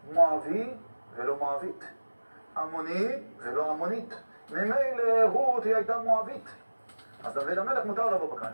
מואבי ולא מואבית, עמוני ולא עמונית. ממילא רות היא הייתה מואבית, אז דוד המלך מותר לבוא בקהל.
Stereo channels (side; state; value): both; inverted; correlation -1.00